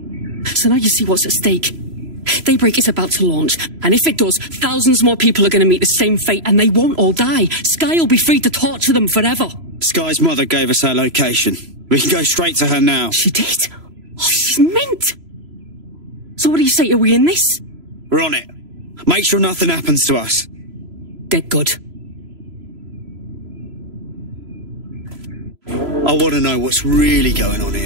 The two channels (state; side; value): late; left; 3.0 ms